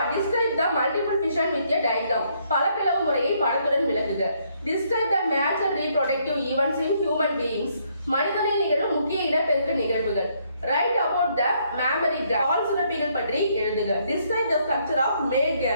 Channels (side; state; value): both; inverted; correlation -0.71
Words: Describe the multiple fission with a diagram. பல பிளவு முறையை படத்துடன் விளக்குக. Describe the major reproductive events in human beings. மனிதனில் நிகழும் முக்கிய இனப்பெருக்க நிகழ்வுகள். Write about the mammary gland. பால் சுரப்பிகள் பற்றி எழுதுக. Describe the structure of male